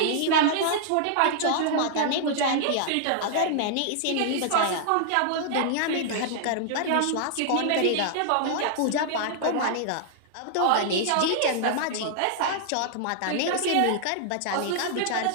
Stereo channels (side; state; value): both; different; correlation -0.01